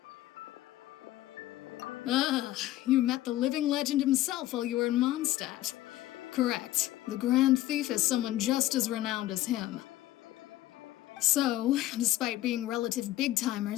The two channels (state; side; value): quieter; right; 15.3 dB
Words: Ah, you met the living legend himself while you were in Mondstadt. Correct. The Grand Thief is someone just as renowned as him. So, despite being relative